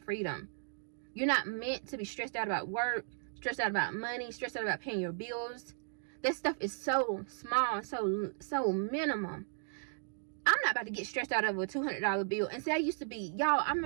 You're not meant to be stressed out about work, stressed out about money, stressed out about paying your bills. That stuff is so small, so minimum. I'm not about to get stressed out over a $200 bill. And see, I used to be, y'all, I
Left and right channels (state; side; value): silent; left; digital silence